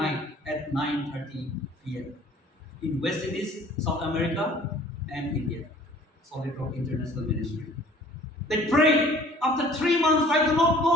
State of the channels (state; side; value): normal; both; correlation 0.52